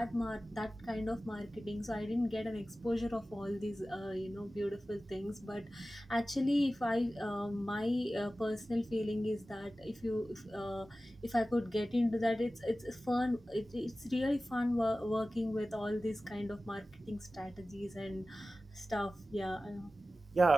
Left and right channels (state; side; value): normal; both; correlation 0.96